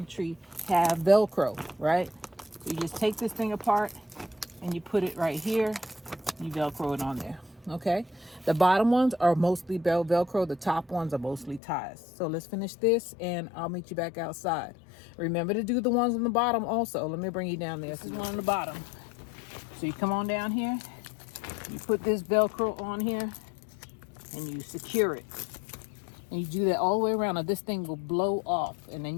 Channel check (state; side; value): drops out; right; at 11.6 s